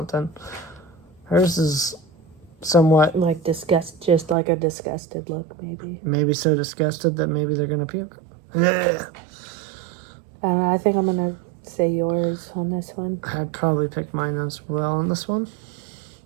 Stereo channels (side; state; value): left; drops out; at 4.4 s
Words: Hers is somewhat... Like just like a disgusted look, maybe. Maybe so disgusted that maybe they're going to puke. Ugh. I don't know. I think I'm going to say yours on this one. I'd probably pick mine as well on this one.